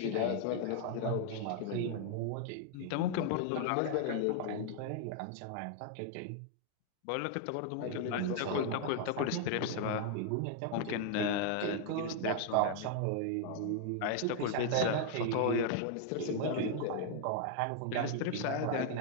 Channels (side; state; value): both; different; correlation 0.00